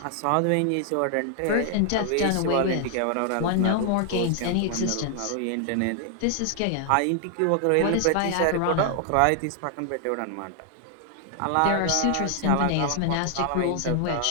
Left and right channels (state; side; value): different; both; correlation 0.00